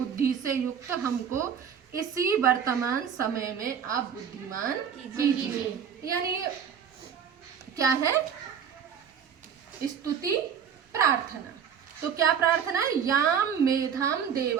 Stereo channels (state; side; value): quieter; left; 7.7 dB